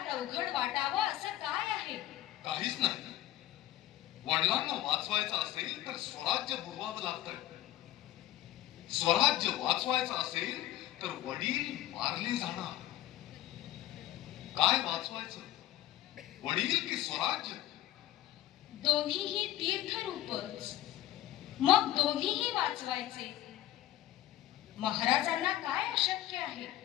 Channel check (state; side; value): quieter; right; 14.1 dB